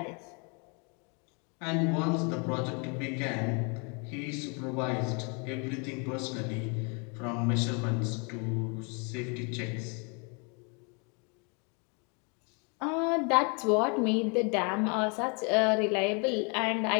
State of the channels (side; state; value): right; quieter; 34.6 dB